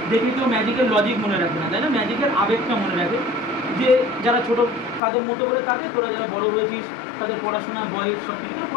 দেখে কেউ ম্যাজিকের লজিক মনে রাখে না, তাই না, ম্যাজিকের আবেগটা মনে রাখে। যে যারা ছোটো তাদের মতো করে তাদের, তোরা যারা বড় হয়েছিস তাদের পড়াশোনা বয়স সব কিছু,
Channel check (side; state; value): right; drops out; at 5.0 s